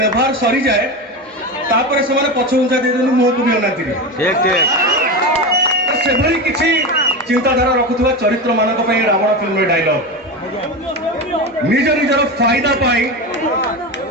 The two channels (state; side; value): normal; both; correlation 0.21